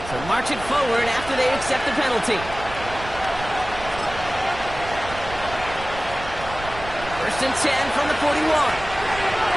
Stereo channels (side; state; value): right; noise; rumble, 13 dB below the sound